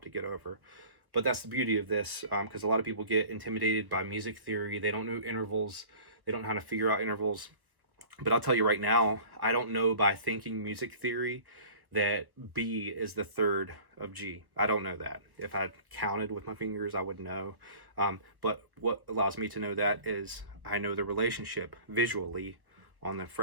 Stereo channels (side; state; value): left; late; 1.1 ms